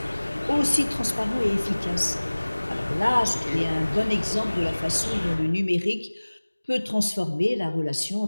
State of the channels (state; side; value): inverted; both; correlation -1.00